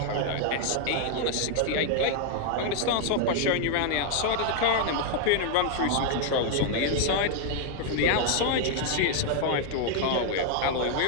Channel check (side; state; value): both; different; correlation 0.00